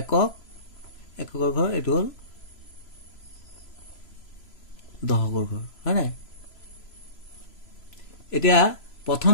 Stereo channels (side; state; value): right; late; 3.0 ms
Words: একক এককৰ ঘৰ এটো হল দহকৰ ঘৰ হয় না এতিয়া প্ৰথম